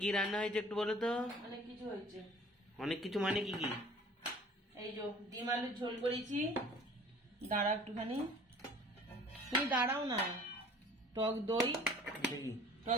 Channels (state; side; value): normal; both; correlation 0.49